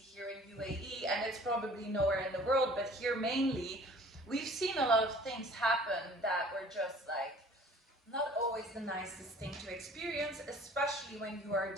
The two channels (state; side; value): normal; both; correlation 0.50